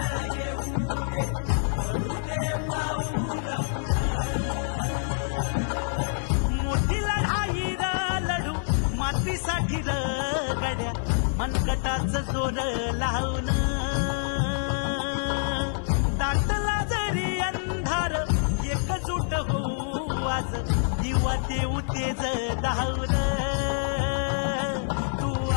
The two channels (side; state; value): right; silent; 60 dB below the other